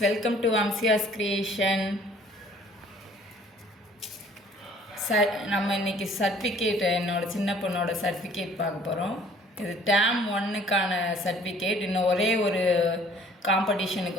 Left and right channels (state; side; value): normal; both; correlation 0.55